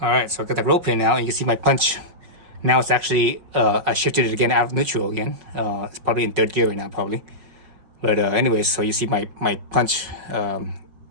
right, so I got the roll pin now, and you can see my punch. Now it's actually, I shifted it again out of neutral again. It's probably in 3rd gear right now, probably. But anyways, so you see my punch,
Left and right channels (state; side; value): late; left; 5.5 ms